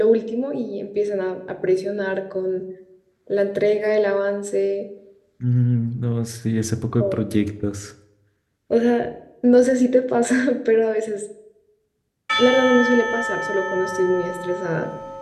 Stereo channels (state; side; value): identical; both; correlation 1.00